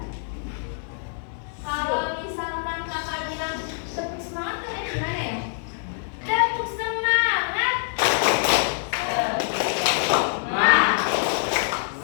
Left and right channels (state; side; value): silent; right; digital silence